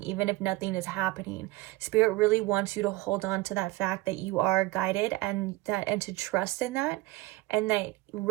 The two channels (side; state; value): left; quieter; 20.0 dB